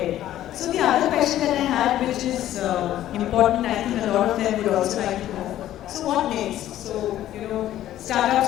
So the other question that I had, which is important, I think a lot of them would also like to know. So what next? So,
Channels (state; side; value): quieter; right; 12.9 dB